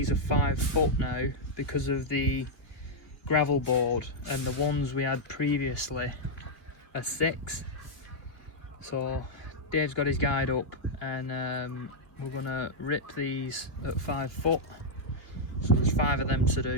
are 5 foot now because of the gravel board, and the ones we had previously are 6. So Dave's got his guide up, and we're gonna rip these at 5 foot. So there's 5 of them to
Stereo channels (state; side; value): late; right; 3.1 ms